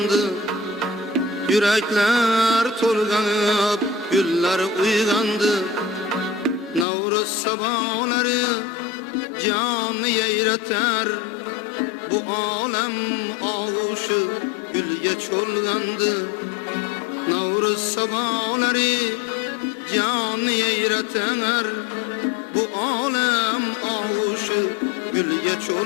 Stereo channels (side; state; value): right; drops out; at 6.9 s